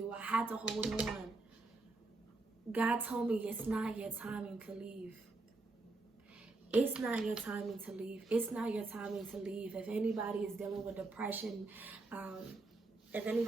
I had to hold on. God told me it's not your timing to leave. It's not your timing to leave. It's not your timing to leave. If anybody is dealing with depression, if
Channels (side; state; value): left; quieter; 3.3 dB